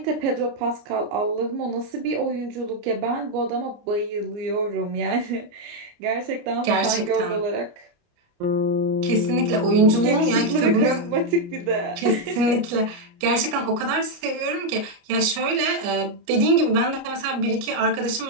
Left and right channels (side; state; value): left; late; 29 ms